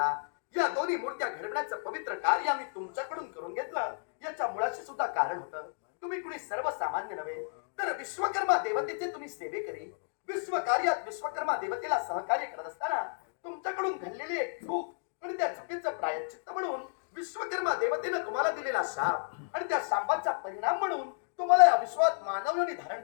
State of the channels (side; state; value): right; silent; digital silence